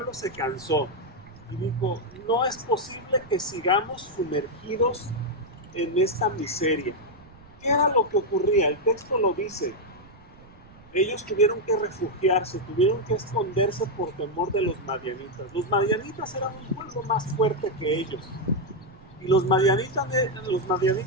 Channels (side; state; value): right; noise; rumble, 23 dB below the sound